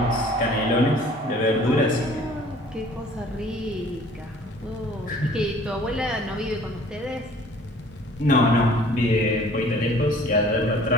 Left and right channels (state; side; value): normal; both; correlation 0.52